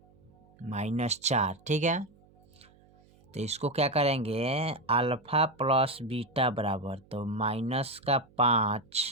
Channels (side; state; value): right; noise; hum, 29 dB below the sound